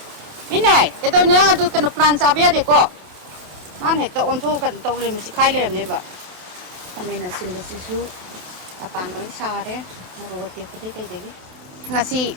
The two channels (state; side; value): late; left; 28 ms